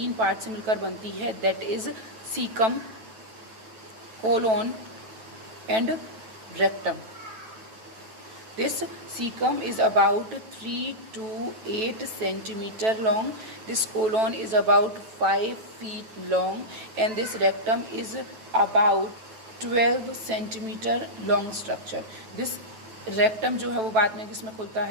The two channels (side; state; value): left; late; 9.1 ms